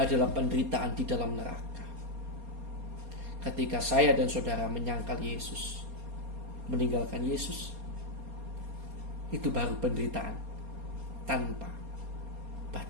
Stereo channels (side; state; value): left; late; 4.3 ms